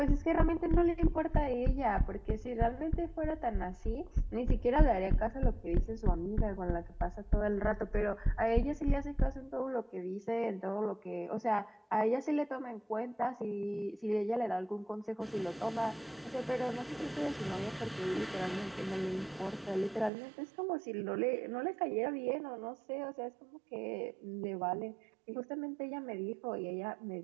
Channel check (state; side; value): drops out; left; at 20.1 s